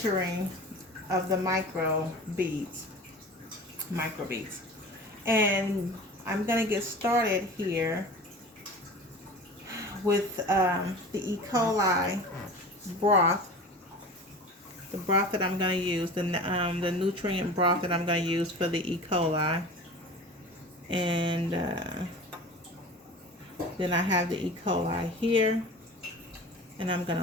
of the microbeads. And I'm going to get started here with the E. coli broth, the broth that I'm going to use, the nutrient broth that I'm going to use for the E. coli. And then I have the E. coli here. And I'm going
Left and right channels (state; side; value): normal; both; correlation 0.36